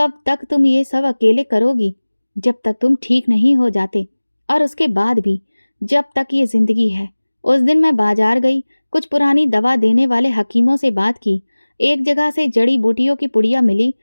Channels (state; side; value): inverted; both; correlation -1.00